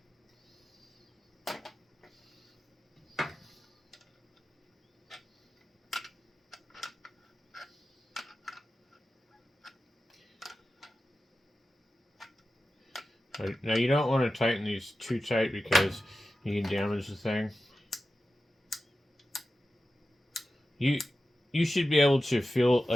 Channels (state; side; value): normal; both; correlation 0.93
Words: Now you don't want to tighten these too tight because you can damage the thing. you you should be able to feel